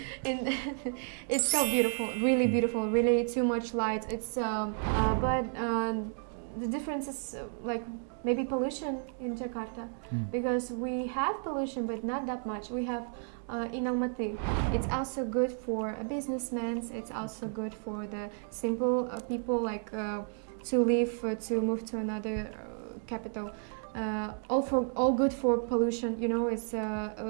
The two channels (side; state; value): left; silent; 56 dB below the other